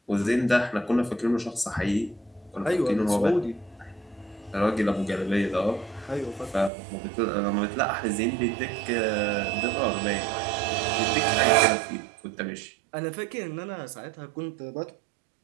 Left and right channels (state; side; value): drops out; left; at 6.7 s